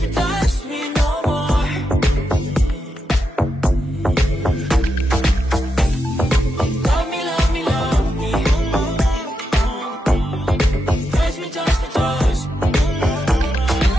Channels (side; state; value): both; normal; correlation 0.85